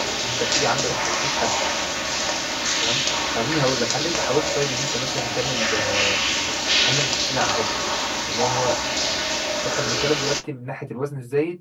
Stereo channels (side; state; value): both; identical; correlation 1.00